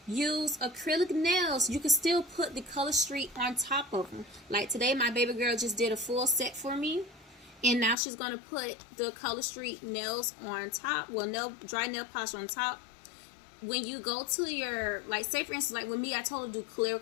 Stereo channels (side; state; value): right; drops out; at 8.0 s